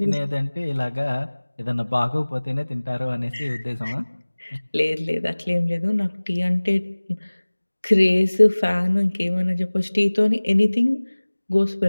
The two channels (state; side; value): inverted; both; correlation -1.00